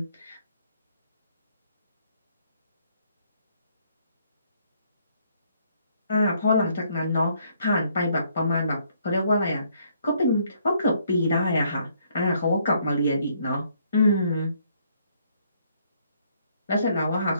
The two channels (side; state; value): both; inverted; correlation -0.68